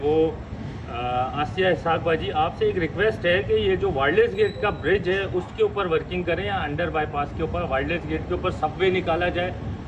आसिया इसहाक बाजी, आपसे एक रिक्वेस्ट है कि ये जो वायरलेस गेट का ब्रिज है उसके ऊपर वर्किंग करें, या अंडर बाईपास के ऊपर वायरलेस गेट के ऊपर सबवे निकाला जाए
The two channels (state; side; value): identical; both; correlation 1.00